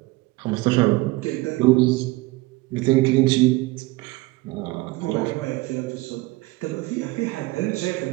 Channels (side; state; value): left; quieter; 21.4 dB